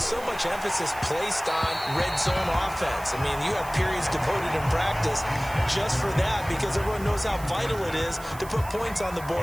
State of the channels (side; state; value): right; noise; hiss, 17 dB below the sound